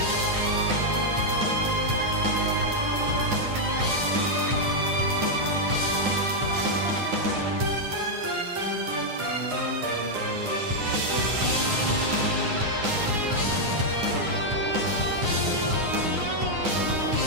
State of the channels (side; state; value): left; late; 9.7 ms